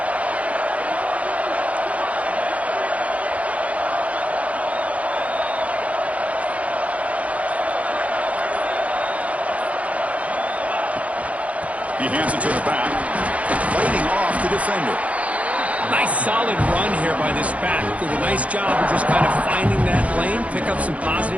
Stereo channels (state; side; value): late; left; 0.066 ms